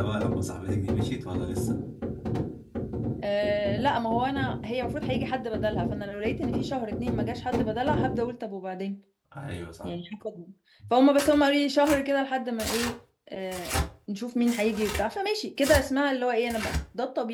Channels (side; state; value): both; identical; correlation 1.00